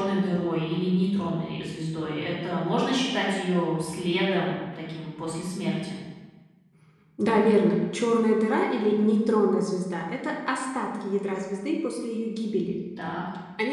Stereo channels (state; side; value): identical; both; correlation 1.00